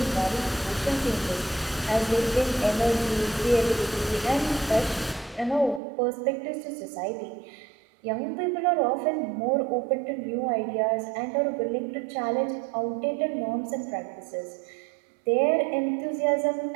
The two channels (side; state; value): left; drops out; at 5.8 s